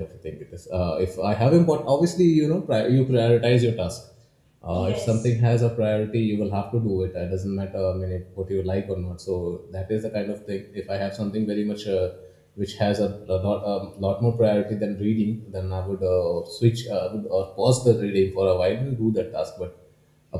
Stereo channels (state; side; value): identical; both; correlation 1.00